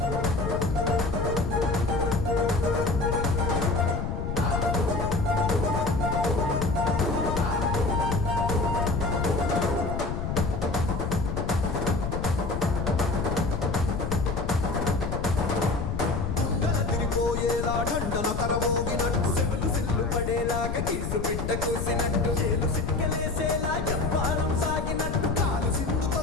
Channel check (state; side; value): noise; left; rumble, 3 dB below the sound